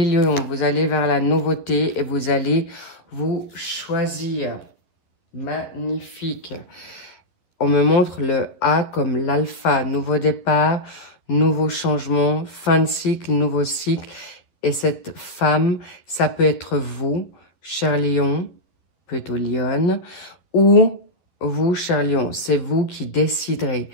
lions, vous allez vers la nouveauté et vous allez vous choisir. Magnifique. On me montre le A comme l'alpha, nouveau départ, nouveau changement, fin de cycle, nouveau cycle. Et cette femme, ça peut être vous, cher lion, plutôt lionne, ou vous, cher lion, c'est vous qui déciderez.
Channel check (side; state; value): right; late; 11 ms